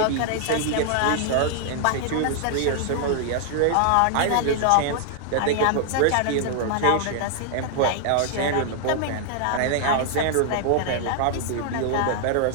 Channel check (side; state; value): both; different; correlation -0.01